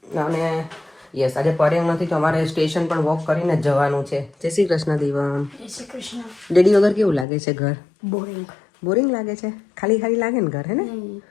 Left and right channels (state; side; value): drops out; right; at 7.2 s